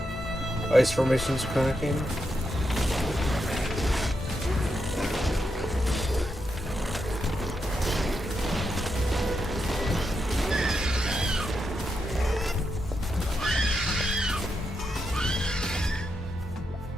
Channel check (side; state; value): both; normal; correlation 0.84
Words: Ice formations cracking.